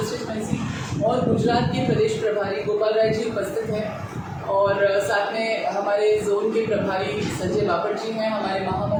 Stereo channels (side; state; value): both; identical; correlation 1.00